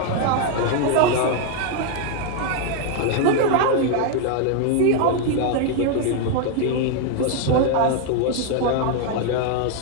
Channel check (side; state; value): both; different; correlation 0.00